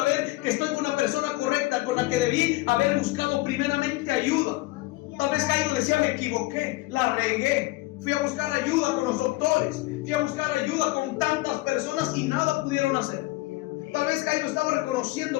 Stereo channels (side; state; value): right; quieter; 20.3 dB